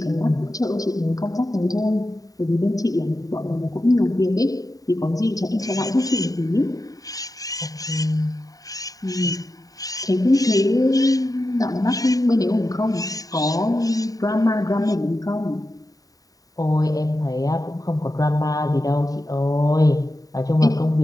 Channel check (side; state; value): right; late; 0.18 ms